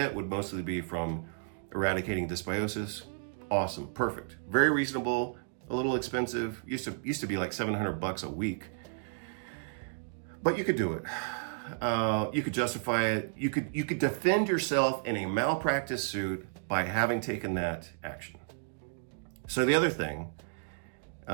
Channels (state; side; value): silent; left; digital silence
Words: would mostly be from eradicating dysbiosis. Awesome, perfect, very reasonable, a little expensive. Used to be like $700 a week, but you could do it. You could justify it. You could defend yourself in a malpractice suit by having taken that action. So the other thing.